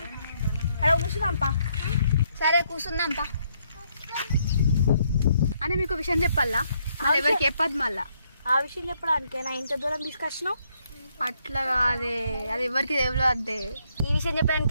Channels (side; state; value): both; inverted; correlation -0.72